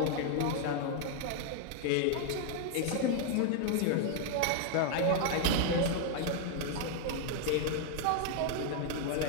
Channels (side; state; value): both; different; correlation 0.00